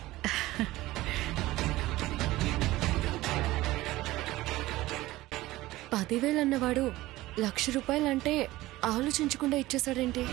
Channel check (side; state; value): left; quieter; 17.7 dB